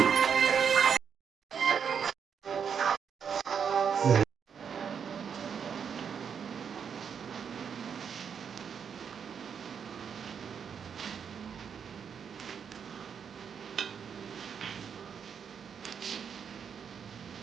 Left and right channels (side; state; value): left; quieter; 7.1 dB